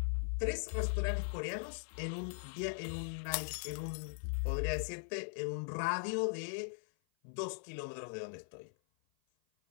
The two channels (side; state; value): right; silent; 51 dB below the other